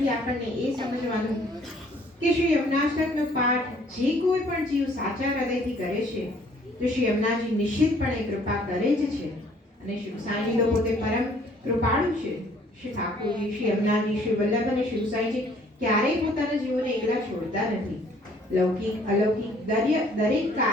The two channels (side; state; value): both; normal; correlation 0.59